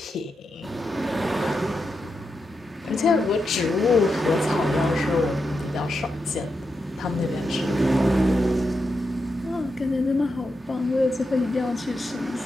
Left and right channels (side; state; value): both; normal; correlation 0.86